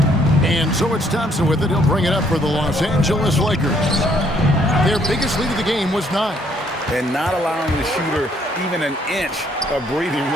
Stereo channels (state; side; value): normal; both; correlation 0.66